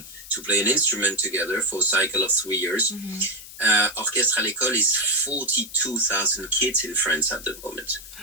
to play an instrument together for a cycle of 3 years. Orchestre à l'école is 42,000 kids in France at the moment.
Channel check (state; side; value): noise; left; hiss, 15 dB below the sound